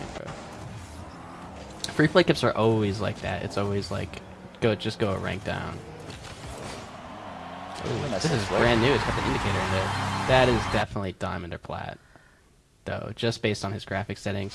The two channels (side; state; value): both; identical; correlation 1.00